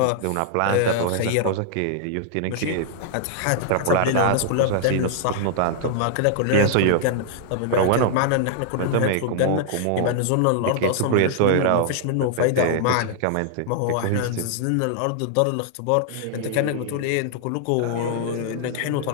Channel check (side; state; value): both; different; correlation -0.01